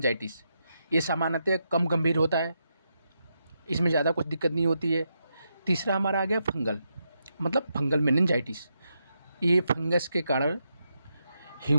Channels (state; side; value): inverted; both; correlation -0.83